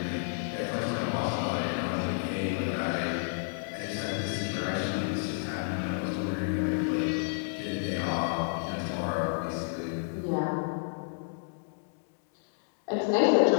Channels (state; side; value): silent; right; digital silence